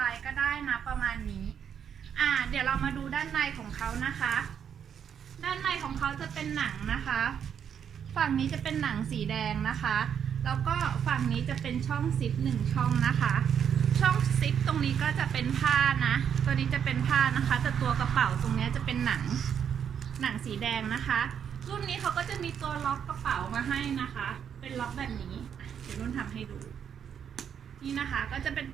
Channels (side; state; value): left; quieter; 8.2 dB